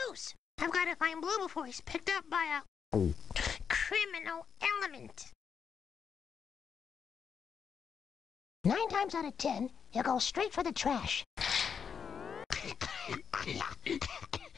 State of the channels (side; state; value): right; quieter; 6.7 dB